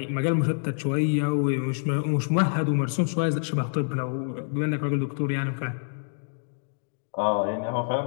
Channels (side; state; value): right; silent; digital silence